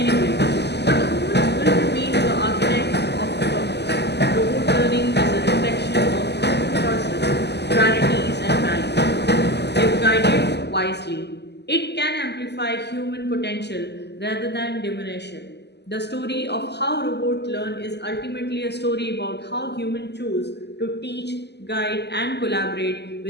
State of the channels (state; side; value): late; right; 0.50 ms